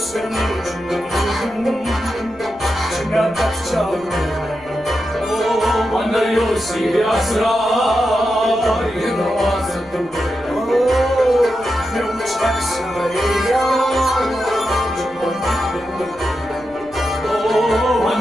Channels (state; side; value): noise; left; rumble, 25 dB below the sound